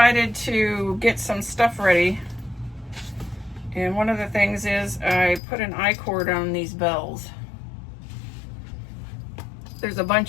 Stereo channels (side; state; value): right; drops out; at 5.4 s